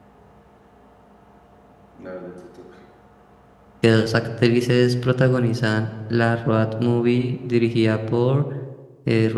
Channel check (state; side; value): identical; both; correlation 1.00